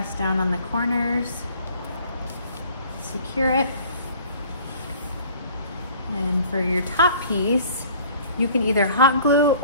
down on the corners, secure it. And for your top piece, you can either hot glue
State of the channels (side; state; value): both; inverted; correlation -0.51